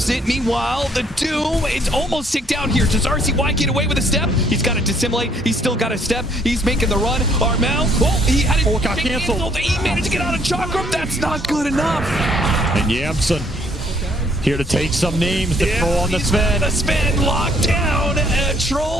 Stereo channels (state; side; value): normal; both; correlation 0.65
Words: it. Meanwhile, the Doom is almost ticked down here. Does RCY get away with a step? He's got to dissimulate. He's still got a step. He's making the run. Armel, he had it got canceled. He managed to get out of Chakram. That's not good enough. And Yamson here to take some names to throw on the Sven. The Sven locked down.